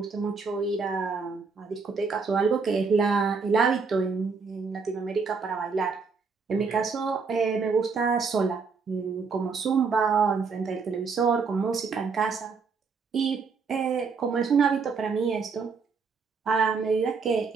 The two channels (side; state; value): left; quieter; 5.0 dB